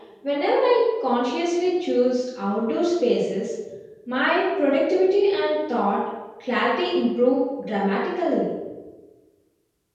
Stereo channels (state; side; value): identical; both; correlation 1.00